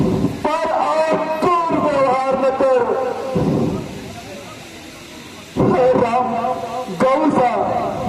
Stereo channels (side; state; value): both; identical; correlation 1.00